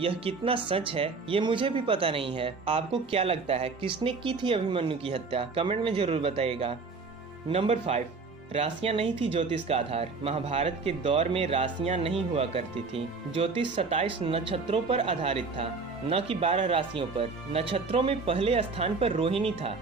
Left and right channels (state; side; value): quieter; left; 4.3 dB